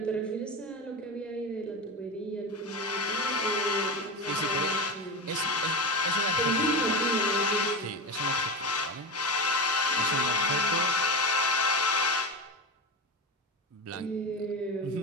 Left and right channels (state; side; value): normal; both; correlation 0.20